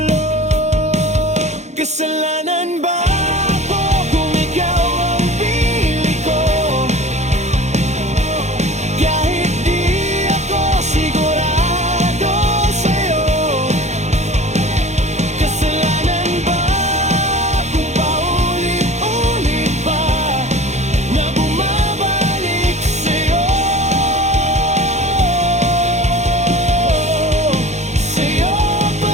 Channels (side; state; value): left; late; 0.33 ms